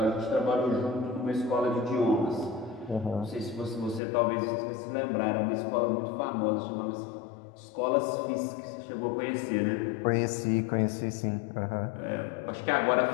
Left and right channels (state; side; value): drops out; right; at 4.0 s